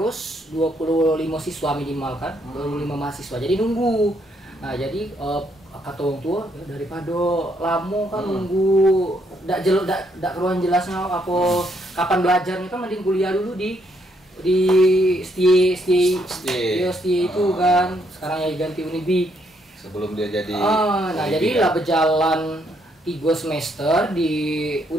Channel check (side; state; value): both; normal; correlation 0.73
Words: 25 siswa minimal kan, 25 mahasiswa. Jadi nunggu. Nah, jadi kata orang tua daripada lama kan nunggu ndak keruan jelasnya apa kapan belajarnya kan, mending kuliah dulu di STI itu kan, sekarang ya ganti Unibi sebelum dia jadi nah jadi lah berjalan 3 semester di